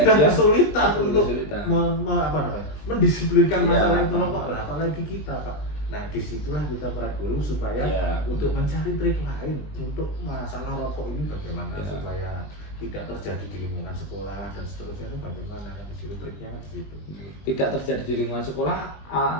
dia kesulitan untuk kesulitan. mendisiplinkan Ya, masalah itu Pak. rokok lah, apalagi kita, Pak. Nah, disitulah kita para guru supaya Ya, untuk mencari trik lain untuk masalah rokok ini bagaimana Ya. supaya tidak terjadi di lingkungan sekolah dan seterusnya itu bagaimana, kan di situ triknya kan di situ. tidak terjadi di lingkungan sekolah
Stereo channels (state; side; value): late; right; 20 ms